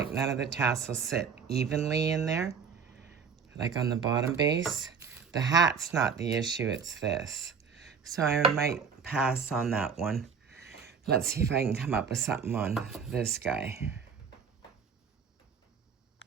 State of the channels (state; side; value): quieter; left; 6.1 dB